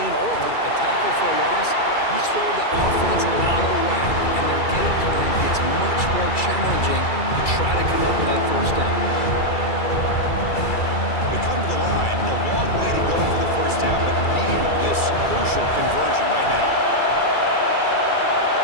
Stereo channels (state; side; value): late; right; 2.3 ms